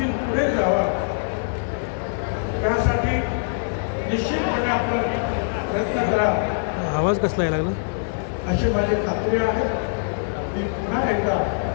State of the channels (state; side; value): silent; right; digital silence